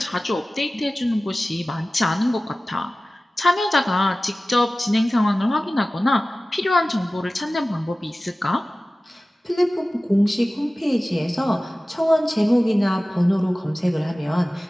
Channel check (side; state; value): both; normal; correlation 0.97